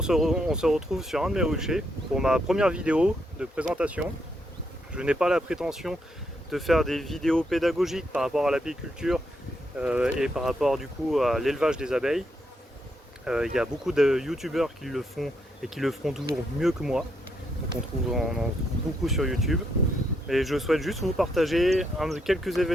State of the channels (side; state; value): both; normal; correlation 0.78